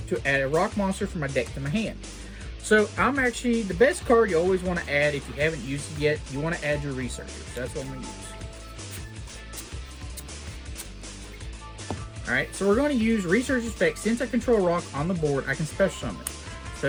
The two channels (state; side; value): identical; both; correlation 1.00